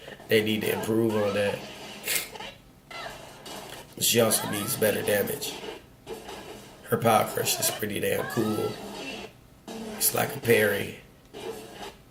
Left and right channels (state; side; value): identical; both; correlation 1.00